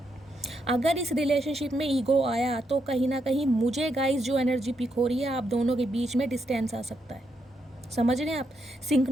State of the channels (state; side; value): normal; both; correlation 0.80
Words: अगर इस रिलेशनशिप में ईगो आया तो कहीं ना कहीं मुझे गाइस जो एनर्जी पिक हो रही है, आप दोनों के बीच में डिस्टेंस आ सकता है। समझ रहे हैं आप।